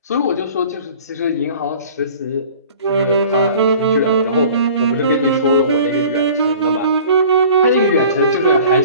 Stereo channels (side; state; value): both; inverted; correlation -0.46